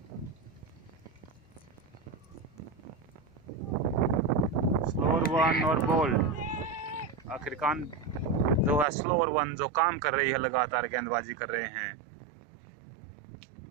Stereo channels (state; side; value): drops out; left; at 8.8 s